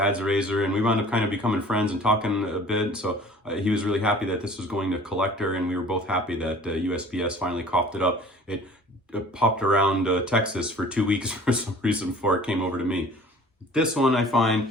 razor, and we wound up kind of becoming friends and talking a bit. So he was really happy that this was going to collector, and we were both happy that USPS finally coughed it up. It popped around Texas for 2 weeks for some reason before it came over to me. This one I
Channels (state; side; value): normal; both; correlation 0.48